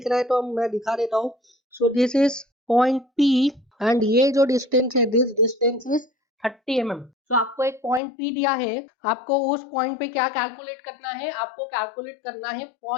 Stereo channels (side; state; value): right; drops out; at 8.0 s